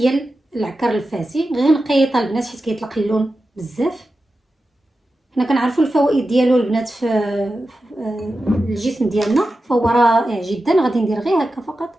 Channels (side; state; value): both; normal; correlation 0.92